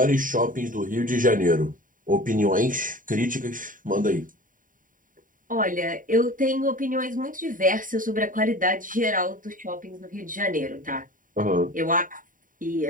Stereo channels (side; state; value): left; late; 0.39 ms